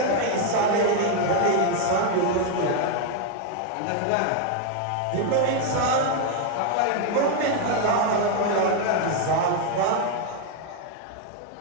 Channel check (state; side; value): different; both; correlation 0.01